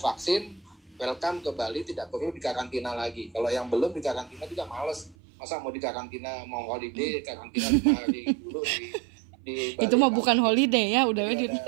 welcome ke Bali, tidak perlu dikarantina lagi. Kalau yang belum dikarantina juga males. Masa mau dikarantina, mau holiday, karantina 5 hari dulu di Bali. Itu mah bukan holiday ya, udah ada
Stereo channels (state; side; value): drops out; left; at 5.2 s